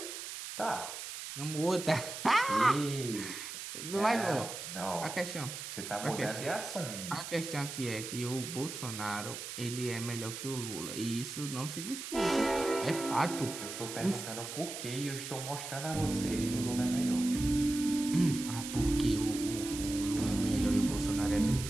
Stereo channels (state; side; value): noise; right; hiss, 8 dB below the sound